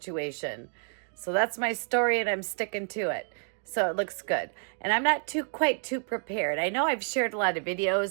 So that's my story, and I'm sticking to it. So it looks good. And I'm not quite too prepared. I know I've shared a lot of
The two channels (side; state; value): left; silent; 57 dB below the other